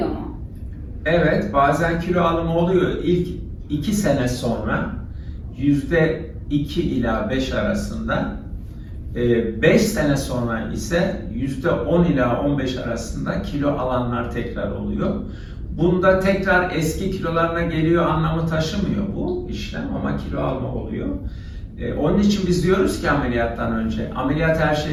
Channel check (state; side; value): identical; both; correlation 1.00